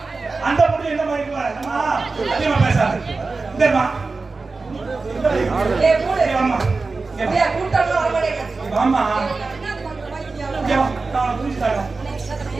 அந்த பொண்ணு என்ன மாதிரி இருக்கா? அம்மா அதிகமா பேசாத. இந்தம்மா ஏய் மூடு. அம்மா ஏய் கூட்டம்ல வர மாட்டேங்க. அம்மா இங்க வா. நான் புரிஞ்சுட்டாங்க.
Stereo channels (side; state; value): left; quieter; 3.9 dB